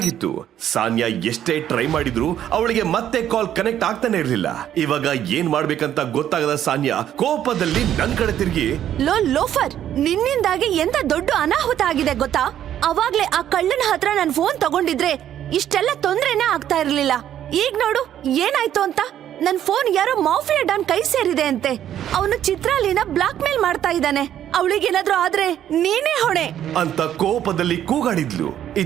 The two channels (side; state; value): left; quieter; 10.9 dB